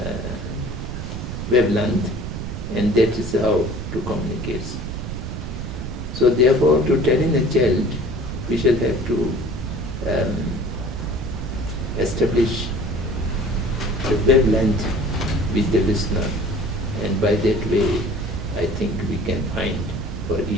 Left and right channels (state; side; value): noise; right; rumble, 6 dB below the sound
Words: wavelength, and that is how to communicate. So therefore, to telling a child, we shall have to establish the wavelength with the listener, and by that way, I think we can find for